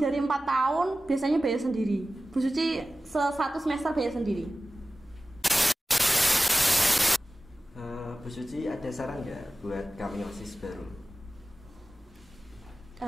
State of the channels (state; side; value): normal; both; correlation 0.96